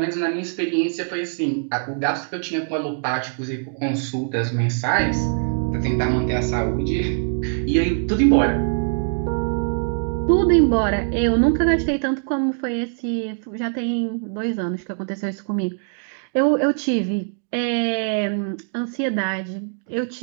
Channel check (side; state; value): left; silent; digital silence